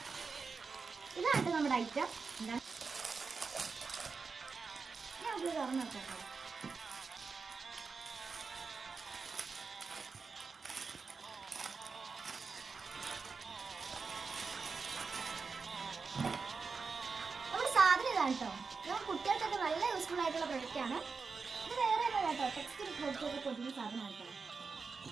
ഇതാണ് നമ്മുടെ ഐറ്റം. എന്താണ് ഞാൻ തുറന്നു നോക്കാം. കേട്ടോ, നമ്മൾ കുട്ടികൾക്കൊക്കെ നല്ല യൂസ്ഫുൾ ആയിട്ടുള്ള പ്രൊഡക്റ്റാണ്. ഇത് വേറെ കേട്ടോ, ടെക്സ്റ്റ് ബുക്കൊക്കെ പൊതിയുന്ന സാധനമാണ് കേട്ടോ.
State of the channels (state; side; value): quieter; left; 4.8 dB